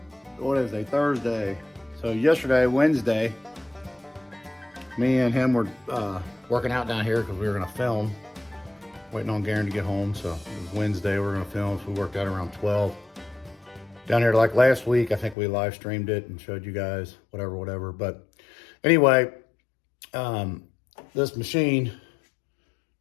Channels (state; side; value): drops out; right; at 15.4 s